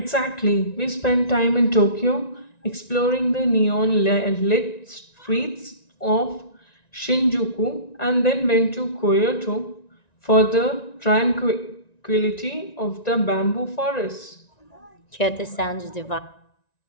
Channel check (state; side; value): late; right; 1.9 ms